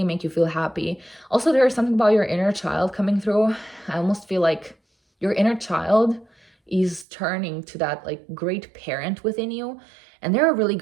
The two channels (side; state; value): left; drops out; at 7.1 s